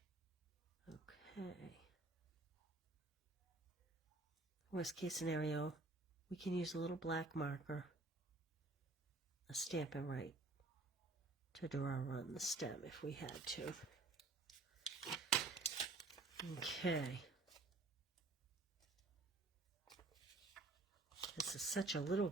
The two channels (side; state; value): left; quieter; 3.1 dB